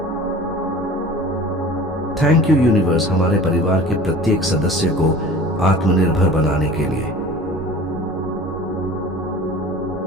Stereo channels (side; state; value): both; normal; correlation 0.42